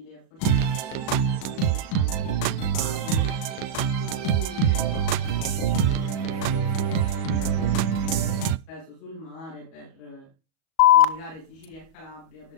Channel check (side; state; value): right; late; 37 ms